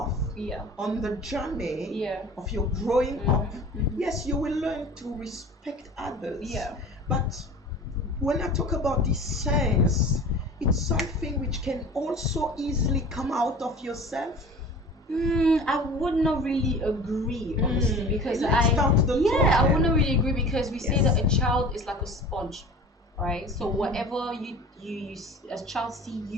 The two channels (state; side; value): normal; both; correlation 0.40